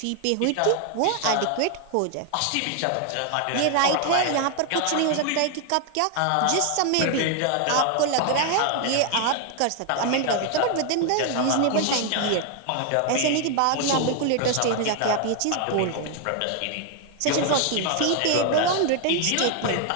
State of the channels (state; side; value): different; both; correlation 0.00